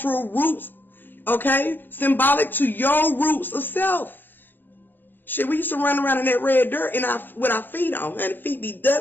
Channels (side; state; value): right; late; 0.091 ms